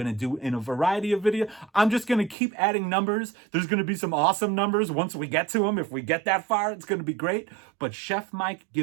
to do in a variety of videos. I'm just going to keep adding numbers. There's going to be some awesome numbers once we get to them. If we get that far, it's going to be great. But Chef Mike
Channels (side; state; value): left; drops out; at 2.4 s